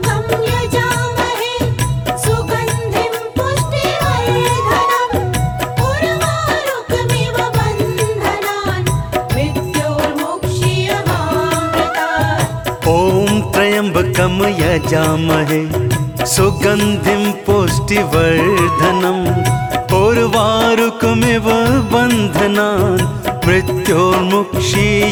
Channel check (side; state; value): both; identical; correlation 1.00